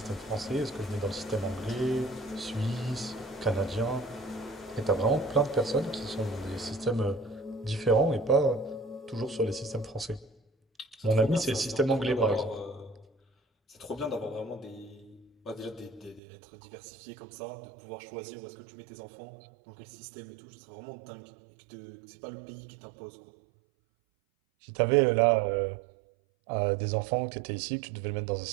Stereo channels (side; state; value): left; drops out; at 16.2 s